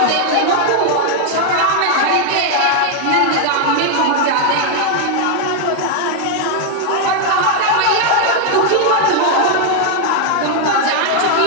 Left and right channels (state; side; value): different; both; correlation 0.00